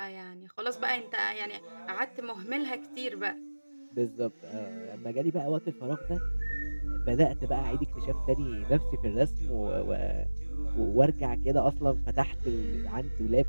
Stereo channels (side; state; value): both; inverted; correlation -1.00